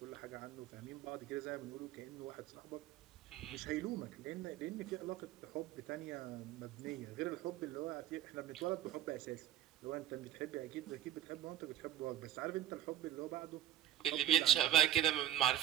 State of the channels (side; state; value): left; quieter; 12.2 dB